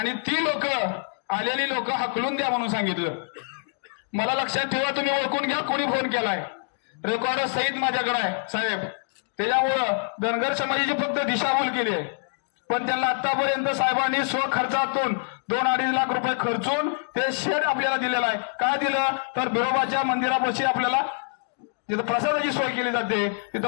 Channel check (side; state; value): right; silent; digital silence